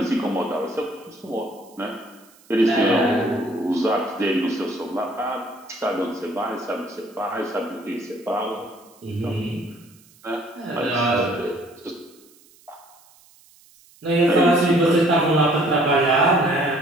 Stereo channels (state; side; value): noise; right; hiss, 28 dB below the sound